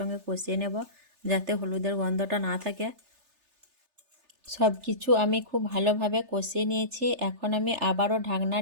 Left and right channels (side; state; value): left; late; 3.3 ms